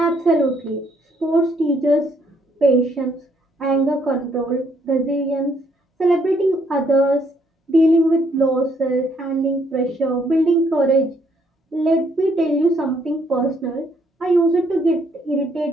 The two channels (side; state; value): both; normal; correlation 0.69